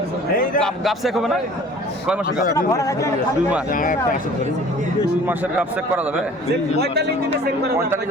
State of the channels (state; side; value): normal; both; correlation 0.48